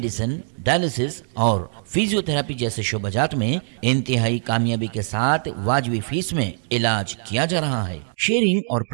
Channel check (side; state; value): left; silent; 64 dB below the other